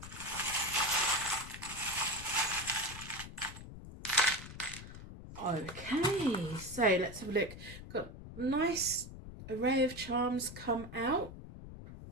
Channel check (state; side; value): noise; left; rumble, 13 dB below the sound